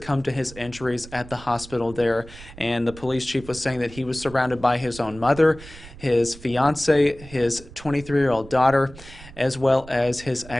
to his injuries at the hospital there, and the police chief was saying that he was surrounded by his own mother, his fiancée, his 23-year-old daughter, as well as his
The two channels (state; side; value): noise; right; rumble, 18 dB below the sound